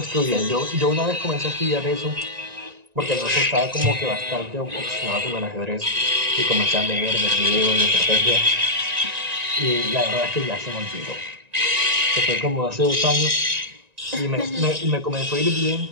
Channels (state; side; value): late; left; 1.9 ms